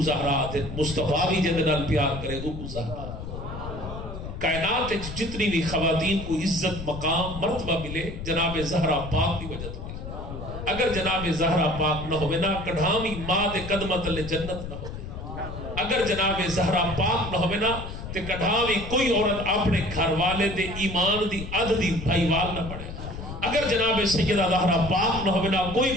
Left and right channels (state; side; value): noise; left; rumble, 9 dB below the sound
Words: زہرا دے مصطفیٰ بھی جے نال پیار کرے او زہرا کائنات جتنی بھی خواتین کو عزت مقام مرتبہ ملے جناب زہرا پاک کی وجہ تو اگر جناب زہرا پاک نہ ہوئے نا کڑھامی ماں دے قدمت لے جنت نہ ہوئے اگر جناب زہرا پاک نہ ہوئے نا تے کڑھامی کوئی عورت اپنے گھر والے دے ایمان دی عدد دی بھائیوال نہ پڑے اگر جناب سیدہ زہرا پاک نہ ہوئے نا کوئی